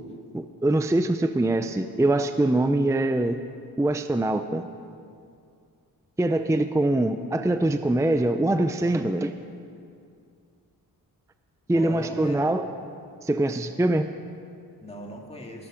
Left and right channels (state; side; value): normal; both; correlation 0.87